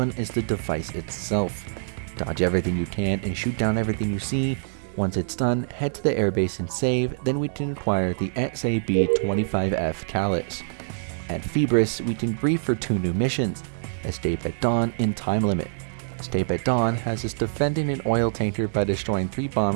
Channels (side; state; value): left; silent; digital silence